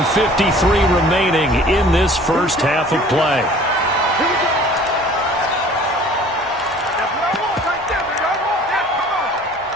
remaining in this first half of play.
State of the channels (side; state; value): both; normal; correlation 0.49